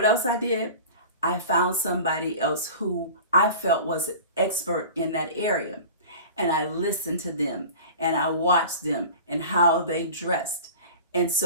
else I did? I found somebody else who I felt was an expert in that area. And I listened to them and I watched them and how they dressed. And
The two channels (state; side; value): inverted; both; correlation -0.37